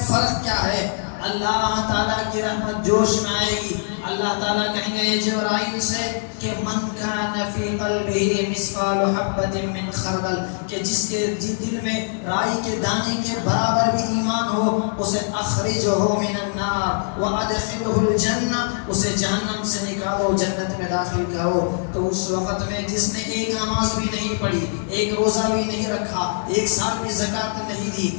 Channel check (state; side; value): silent; right; digital silence